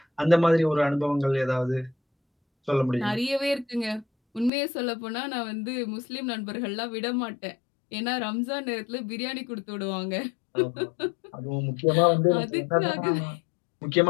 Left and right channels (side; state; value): right; drops out; at 4.5 s